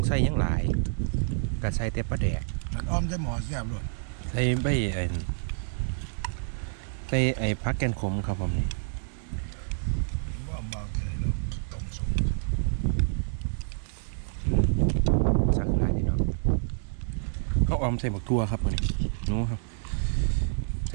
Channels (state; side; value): silent; left; digital silence